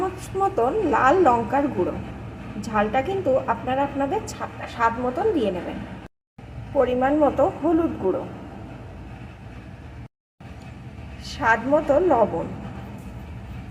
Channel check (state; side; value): identical; both; correlation 1.00